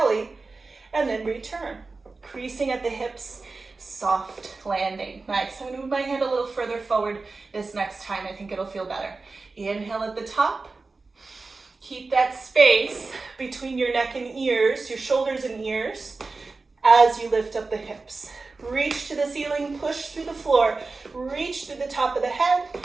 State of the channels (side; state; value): left; quieter; 3.8 dB